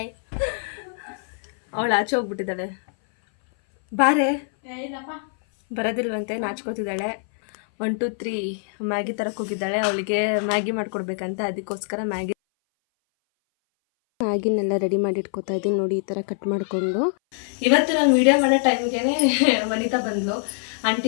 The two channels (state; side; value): silent; right; 59 dB below the other